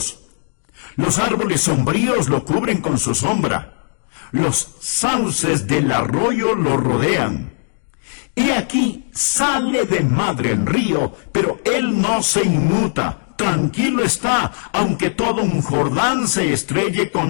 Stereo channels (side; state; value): right; silent; digital silence